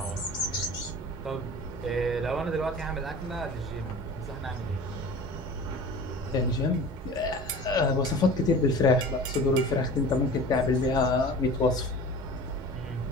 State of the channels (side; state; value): both; normal; correlation 0.39